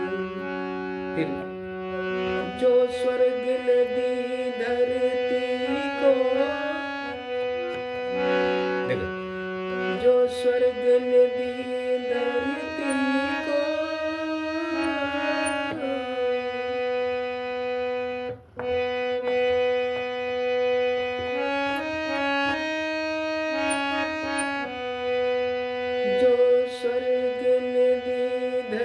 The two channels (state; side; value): identical; both; correlation 1.00